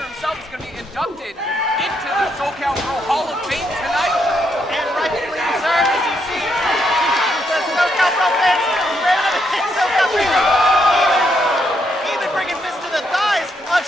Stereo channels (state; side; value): normal; both; correlation 0.77